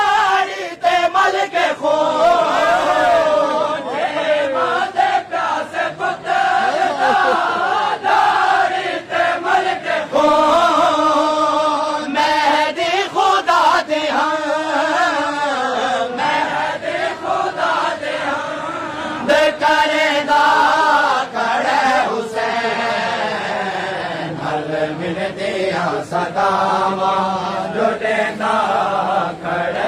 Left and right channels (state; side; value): identical; both; correlation 1.00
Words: ते मल के खो छे मादे प्यासे पुत्र दाड़ी ते मल के खो मेहदी खुदा दे मेहदी खुदा दे दे करेदा खड़े मिल दिया सदावा जो देंदा